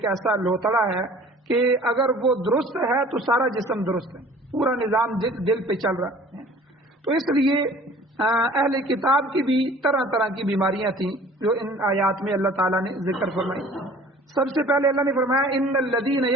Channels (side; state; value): both; normal; correlation 0.48